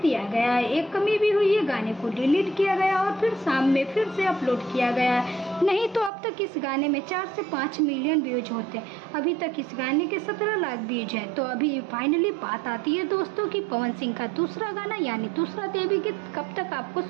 दिया गया है। एक कमी भी हुई है, गाने को डिलीट किया गया और फिर शाम में फिर से अपलोड किया गया है। नहीं तो अब तक इस गाने में 4 से 5 मिलियन व्यूज होते हैं। अभी तक इस गाने के 17 लाख व्यूज हैं। तो अभी फाइनली बात आती है दोस्तों कि पवन सिंह का दूसरा गाना यानी दूसरा देवी गीत कब तक आपको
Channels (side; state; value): left; drops out; at 6.1 s